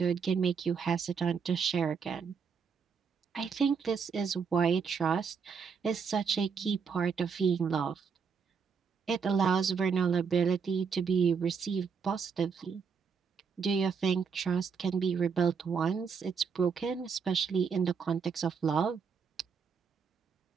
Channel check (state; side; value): quieter; left; 6.0 dB